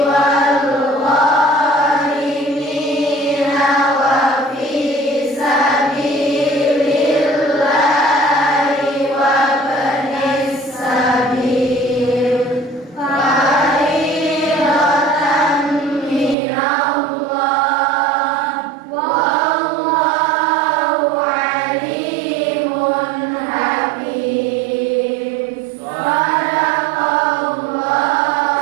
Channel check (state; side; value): drops out; left; at 16.4 s